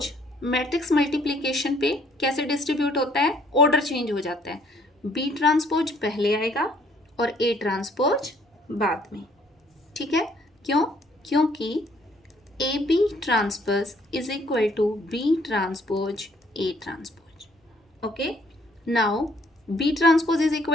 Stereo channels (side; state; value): both; normal; correlation 0.63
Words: मैट्रिक्स मल्टीप्लिकेशन पे कैसे डिस्ट्रीब्यूट होता है? ऑर्डर चेंज हो जाता है. बी ट्रांसपोज पहले आएगा और ए ट्रांसपोज बाद में. ठीक है, क्यों? क्योंकि A B transpose is equal to B transpose A transpose. Okay, now B transpose is